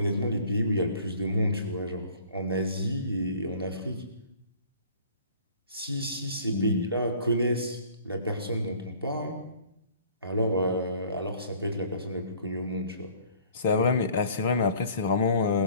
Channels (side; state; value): both; inverted; correlation -0.52